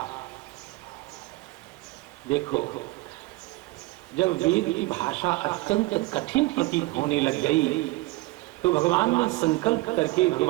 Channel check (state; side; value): quieter; left; 20.5 dB